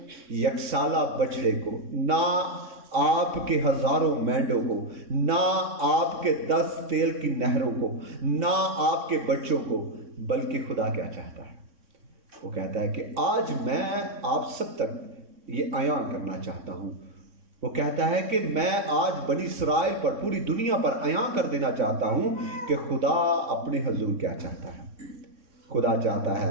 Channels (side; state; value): left; late; 3.6 ms